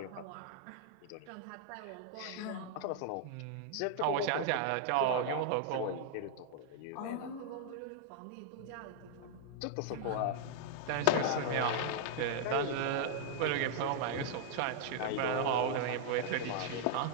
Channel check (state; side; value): different; both; correlation -0.01